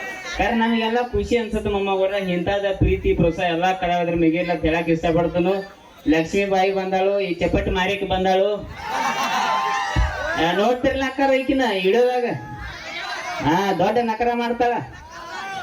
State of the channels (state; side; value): identical; both; correlation 1.00